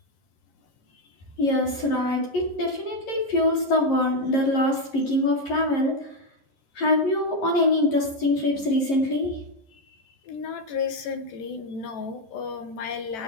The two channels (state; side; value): late; right; 11 ms